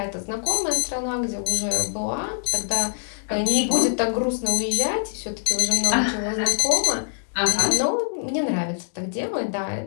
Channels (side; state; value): right; silent; 63 dB below the other